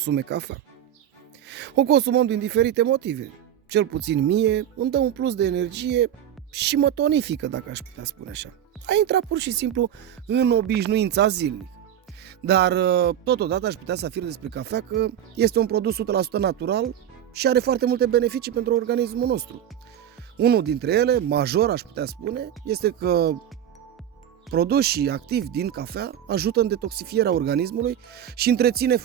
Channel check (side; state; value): left; quieter; 10.3 dB